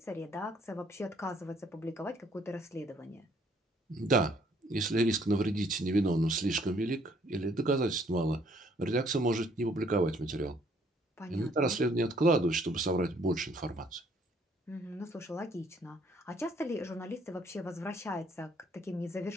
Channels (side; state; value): both; normal; correlation 0.64